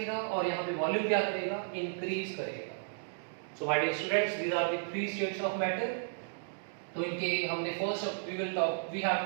और यहाँ पे वॉल्यूम क्या करेगा, इंक्रीज करेगा। So my dear students, these are the three states of matter. तो इनके हमने first we have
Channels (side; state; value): left; silent; digital silence